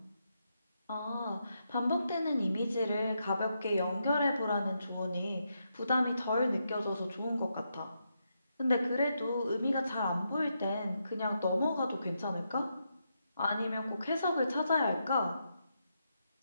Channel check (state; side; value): inverted; both; correlation -0.82